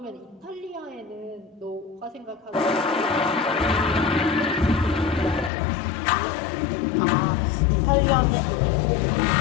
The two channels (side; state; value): right; drops out; at 5.5 s